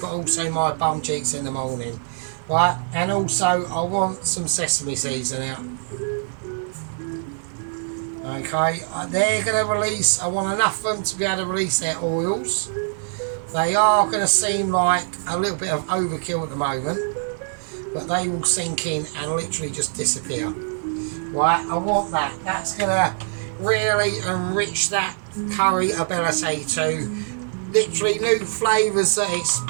but also my bum cheeks in the morning. Right, and also I want some sesame seeds in it. Okay, they're going to release, I want enough of them to be able to release their oils. They are going to seem like a little bit of overkill at the moment, but they will sink in and literally just disappear. Right, I want that. That's going to really enrich that curry ability to literally new flavours that it's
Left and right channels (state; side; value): silent; left; 59 dB below the other